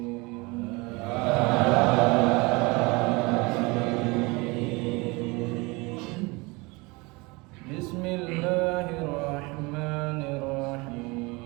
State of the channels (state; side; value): quieter; left; 25.6 dB